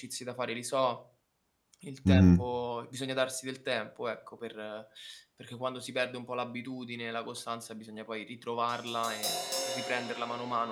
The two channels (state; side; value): identical; both; correlation 1.00